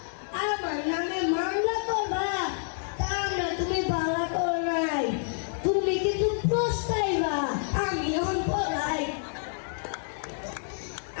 আমার নামে মামলা করবা, তা আমরা তুমি ভাড়া করো নাই। তুমি কিন্তু পস্তাইবা, আমি এখন পড়াই।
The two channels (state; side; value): silent; right; 57 dB below the other